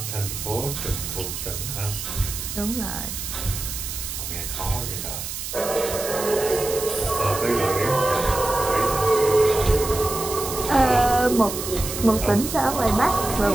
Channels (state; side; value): noise; right; hiss, 6 dB below the sound